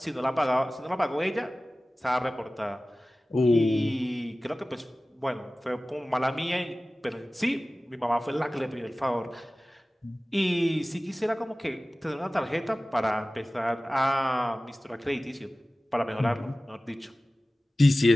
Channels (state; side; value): normal; both; correlation 0.97